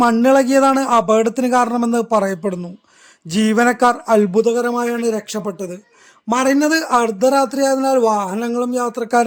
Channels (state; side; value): identical; both; correlation 1.00